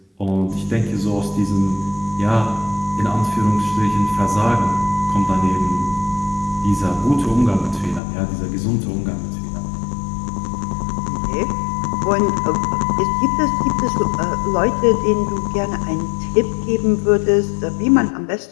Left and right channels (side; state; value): right; drops out; at 8.0 s